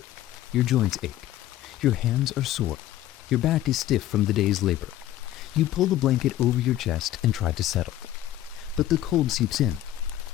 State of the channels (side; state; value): right; quieter; 13.4 dB